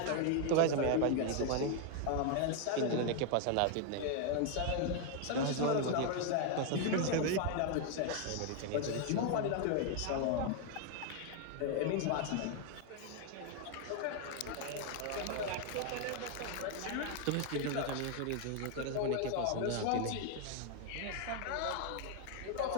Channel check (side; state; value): both; different; correlation 0.00